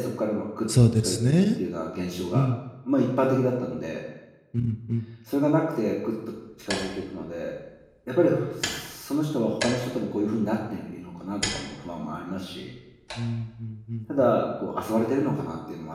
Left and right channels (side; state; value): both; identical; correlation 1.00